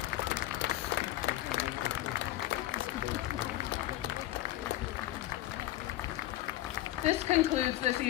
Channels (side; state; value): right; quieter; 15.3 dB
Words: This concludes this